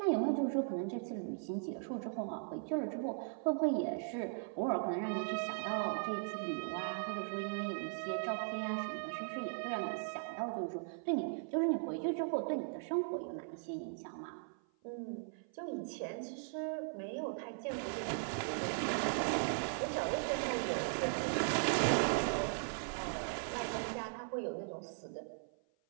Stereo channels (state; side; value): silent; left; 52 dB below the other